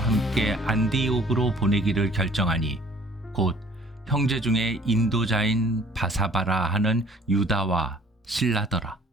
안디옥으로 보내기를 결정하니 곧 형제 중에 인도자인 바사바라 하는 유다와 실라더라.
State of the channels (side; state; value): both; normal; correlation 0.54